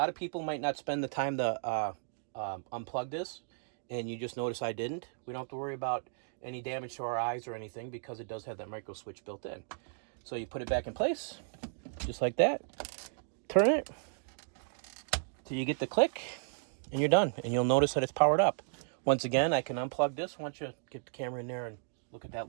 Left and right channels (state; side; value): silent; left; digital silence